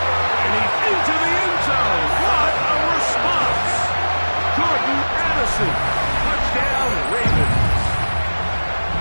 And he's into the end zone. What a response. Jordan Addison. Touchdown, Ravens.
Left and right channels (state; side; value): inverted; both; correlation -1.00